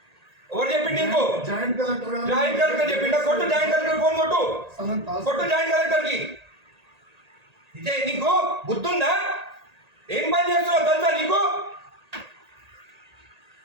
ఎవరు చెప్పిండు నీకు? జాయింట్ కలెక్టర్ చెప్పిండా? కొట్టు జాయింట్ కలెక్టర్ ఫోన్ కొట్టు. కొట్టు జాయింట్ కలెక్టర్ కి. ఇదే నీకు బుద్ధుందా? ఏం పని చేస్తున్నావు తెలుసా నీకు?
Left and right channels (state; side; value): late; left; 1.8 ms